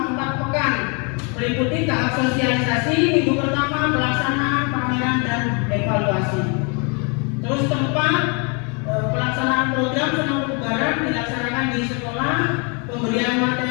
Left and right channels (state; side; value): quieter; right; 34.3 dB